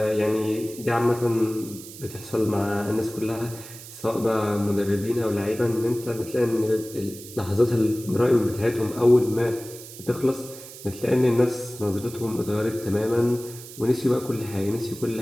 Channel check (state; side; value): noise; right; hiss, 15 dB below the sound